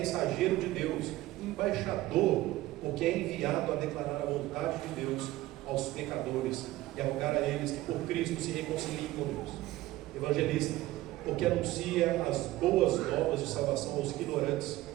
de Deus, embaixador, porque é enviado a declarar a vontade de Deus aos pecadores e a rogar a eles que por Cristo se reconciliem com Deus. Evangelista, porque anuncia as boas novas de salvação aos ignorantes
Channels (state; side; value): quieter; left; 16.9 dB